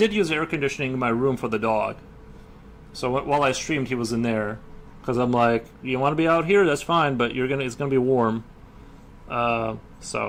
use air conditioning in my room for the dog. So while I streamed, he was in there. because I'm like, you want to be out here, that's fine, but it's gonna be warm.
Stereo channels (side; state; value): both; identical; correlation 1.00